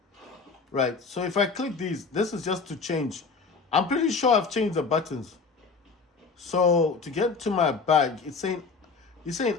right? So if I click these, this is just to change. I'm pretty sure I've changed the buttons. So to get to my bag, it's saying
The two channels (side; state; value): right; quieter; 4.7 dB